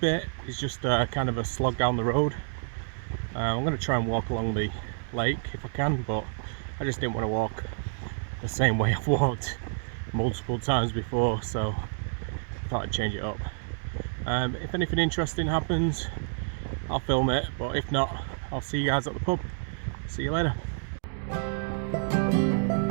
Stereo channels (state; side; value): silent; left; digital silence